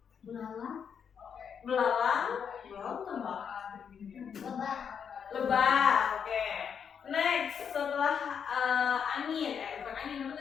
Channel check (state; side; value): quieter; right; 7.3 dB